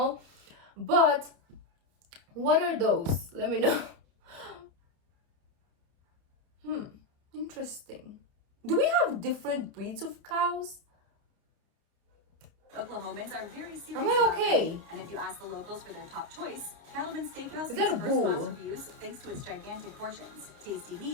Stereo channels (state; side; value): late; left; 30 ms